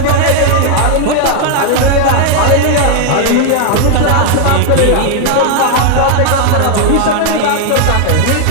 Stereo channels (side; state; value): both; different; correlation 0.00